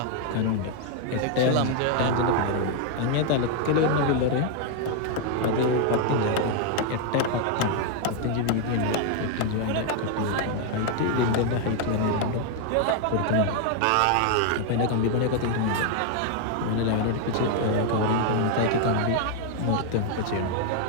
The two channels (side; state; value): both; different; correlation 0.00